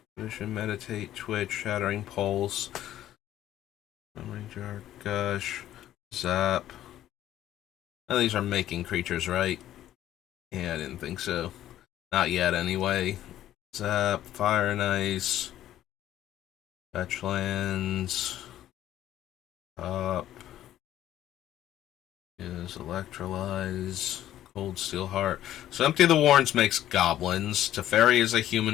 Vision, meditate, twitch, shattering pulse, memory jar, gush, zap. Now these are making creatures, right? Yeah, I didn't think so. Not yet, anyway. Zap, fire and ice, fetch lands, up is electrolyze, cold steel heart. So Empty the Warrens makes goblins. Teferi is a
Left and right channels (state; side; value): quieter; right; 12.6 dB